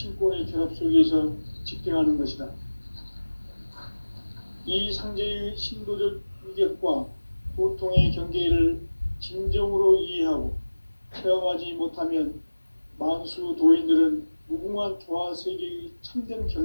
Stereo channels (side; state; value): both; inverted; correlation -1.00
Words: 결합 속에서 집행하는 것이다. 이 상제의 신도적 위격과 도통의 경계를 진정으로 이해하고 체험하지 못하면 만수 도인들은 무궁한 조화 세계의 참된